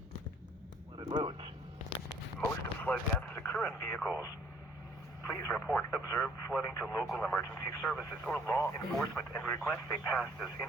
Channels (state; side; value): normal; both; correlation 0.58